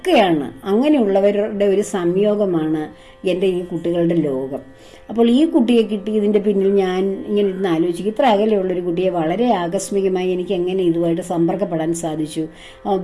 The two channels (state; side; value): identical; both; correlation 1.00